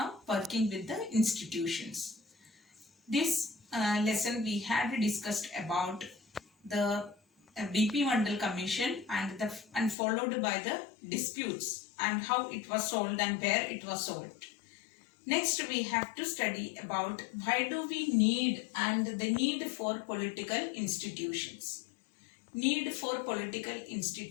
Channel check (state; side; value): drops out; right; at 10.0 s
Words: Working with the institutions. This lesson we had discussed about the BP Mandal Commission and followed by the disputes and how it was solved and where it was solved. Next we have to study about why do we need and the need for political institutions. Need for political